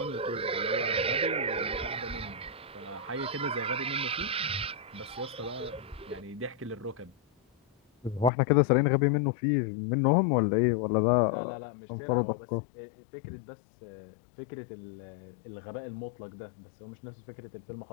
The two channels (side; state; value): right; drops out; at 8.3 s